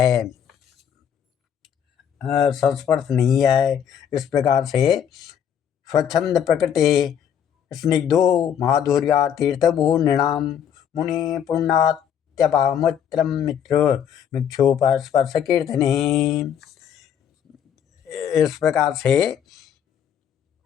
इस प्रकार से स्वच्छंद प्रकृति स्निग्धो माधुर्या तीर्थभू नृणाम मुनि पुण्यात्यपामुत्रम मित्र मिक्षोपस्पर्श कीर्तने। इस प्रकार से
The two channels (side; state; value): right; quieter; 8.8 dB